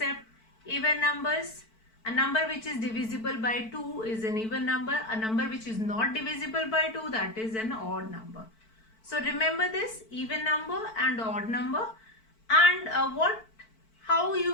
Even numbers, a number which is divisible by 2 is an even number. A number which is not divisible by 2, that is an odd number. So remember this, even number and odd number. And how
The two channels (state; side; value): late; right; 4.5 ms